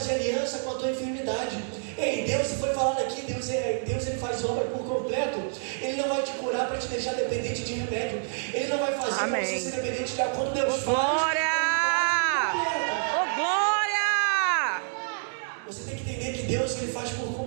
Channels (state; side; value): silent; left; 58 dB below the other